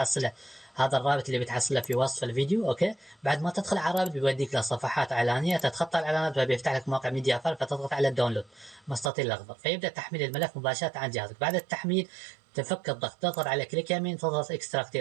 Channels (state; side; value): drops out; left; at 9.1 s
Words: اللي بتحصله في وصف الفيديو. اوكي، بعد ما تدخل على الرابط بيوديك لصفحات اعلانيه، تتخطى الاعلانات فبيفتح لك موقع ميديا فايل، فتضغط على الداونلود مستطيل الاخضر فيبدا تحميل الملف مباشره عن جهازك. بعد التحميل تفك الضغط، تضغط على كليك يمين، تضغط اكستراكت